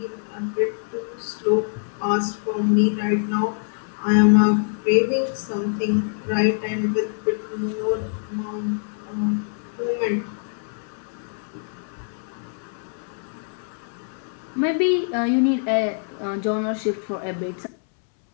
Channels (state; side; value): silent; right; 62 dB below the other